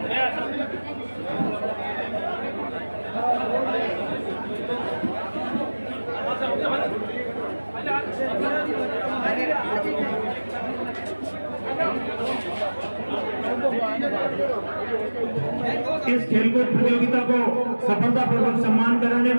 इस खेलकूद प्रतियोगिता को सफलतापूर्वक सम्मान कराने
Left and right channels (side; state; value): both; inverted; correlation -1.00